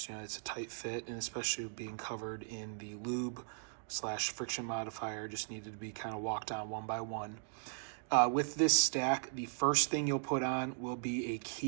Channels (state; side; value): silent; left; digital silence